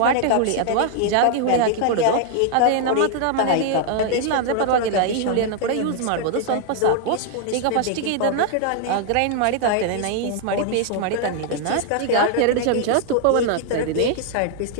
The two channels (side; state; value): both; different; correlation 0.00